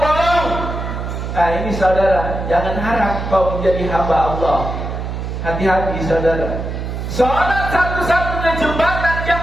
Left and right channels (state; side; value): noise; right; hum, 5 dB below the sound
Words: Nah ini saudara, jangan harap kau menjadi hamba Allah. Hati-hati saudara. Salat satu-satunya jembatan